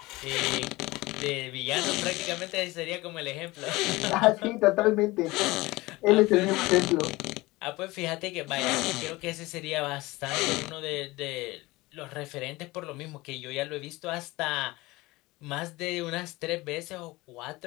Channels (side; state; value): right; quieter; 20.9 dB